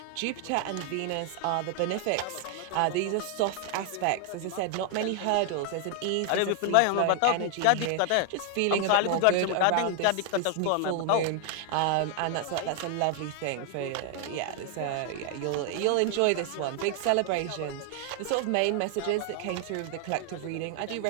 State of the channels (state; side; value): different; both; correlation 0.00